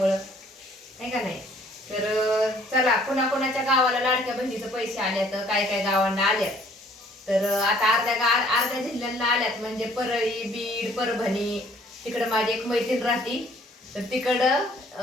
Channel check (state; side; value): normal; both; correlation 0.59